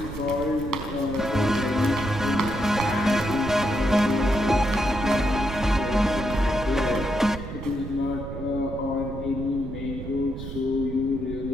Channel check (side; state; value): right; noise; rumble, 9 dB below the sound